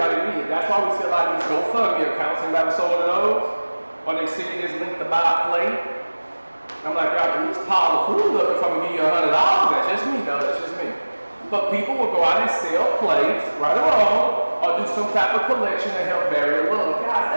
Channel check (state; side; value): inverted; both; correlation -1.00